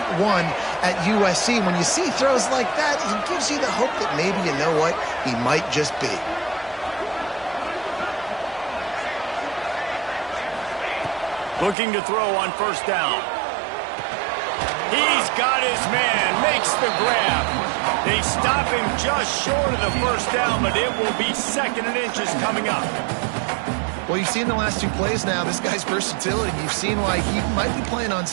one at USC. When you see throws like that, it gives you the hope that maybe, you know what, he might just be. Looking to throw on 1st down. He's got his man, makes the grab. They stop him just short of the 1st down, but it will be 2nd and inches coming up. Well, you've seen the last 2 plays now, this guy's versatility. You've seen why he might be playing on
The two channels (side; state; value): left; drops out; at 11.8 s